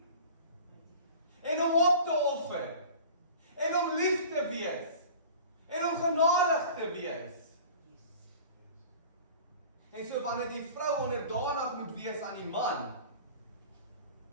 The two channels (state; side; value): inverted; both; correlation -0.41